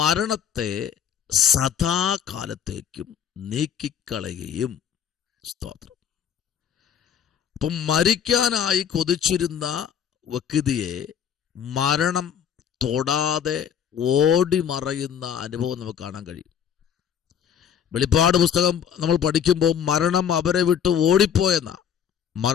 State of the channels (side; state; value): right; quieter; 8.4 dB